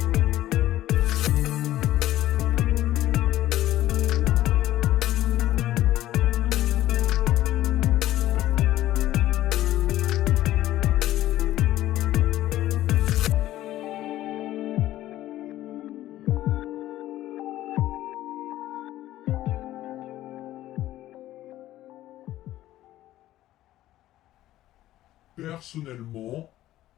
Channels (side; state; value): right; quieter; 14.4 dB